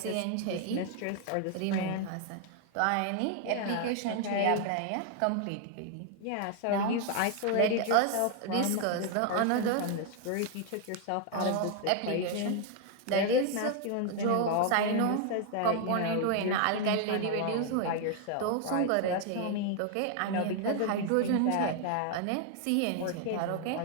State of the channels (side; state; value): both; different; correlation 0.00